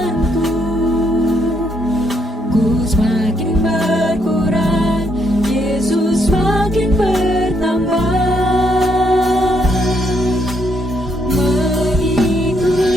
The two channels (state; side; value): normal; both; correlation 0.74